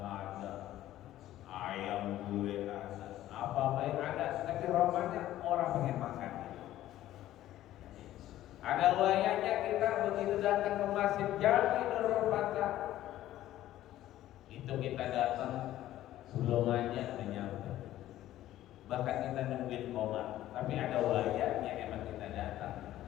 ayam gulai ada, apa-apa yang ada, tapi romanya orang pengen makan. Ada wayanya kita begitu datang ke Masjid Jami Nurul Fatah, itu kita datang belum aja menyambut, bahkan kita nungguin komat. Tapi ada wayanya emang kita datang,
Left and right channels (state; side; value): quieter; right; 13.8 dB